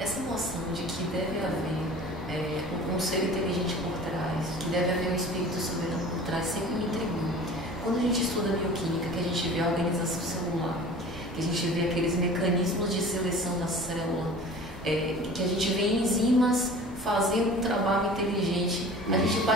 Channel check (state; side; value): normal; both; correlation 0.42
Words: essa noção de que deve haver um ser inteligente por trás, que deve haver um espírito soberano por trás, sempre me intrigou. Quando a gente estuda bioquímica, que a gente vê a organização celular, que a gente vê aqueles mecanismos de seleção da célula, que a gente vê enzimas fazendo um trabalho inteligente, a gente